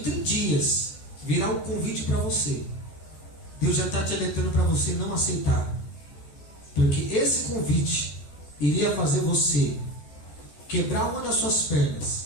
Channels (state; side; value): late; right; 14 ms